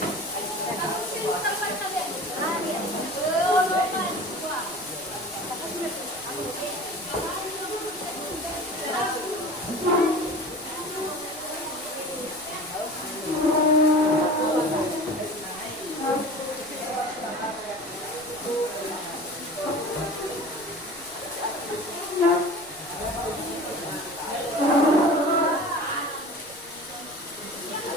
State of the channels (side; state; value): right; noise; rumble, 25 dB below the sound